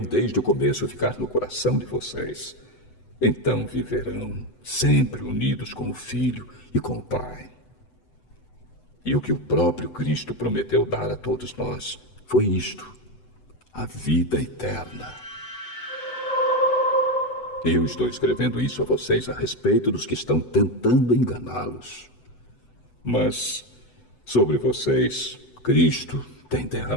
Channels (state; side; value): late; right; 8.0 ms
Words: desde o começo ficar no coração de vocês, então viverão sempre unidos com o Filho e com o Pai. E o que o próprio Cristo prometeu dar a todos nós foi isto: a vida eterna. Eu estou escrevendo isso a vocês a respeito dos que estão tentando enganá-los. Mas sobre vocês, Cristo tem